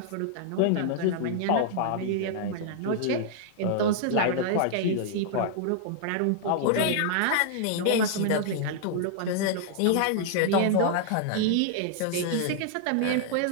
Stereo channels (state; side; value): different; both; correlation -0.01